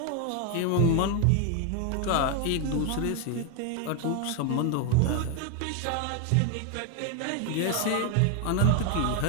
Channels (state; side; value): different; both; correlation 0.01